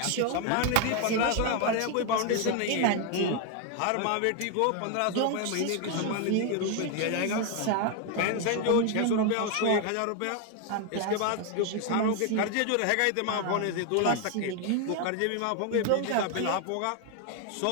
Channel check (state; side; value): different; both; correlation 0.01